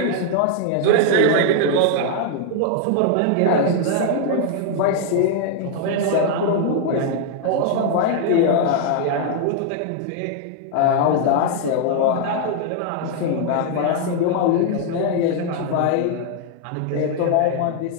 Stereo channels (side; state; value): both; different; correlation 0.00